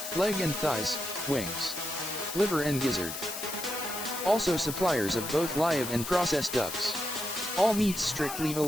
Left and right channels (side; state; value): left; noise; hiss, 7 dB below the sound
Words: Leg and thighs, wings, liver and gizzard. Also suppliers of both live and processed ducks. All meats strictly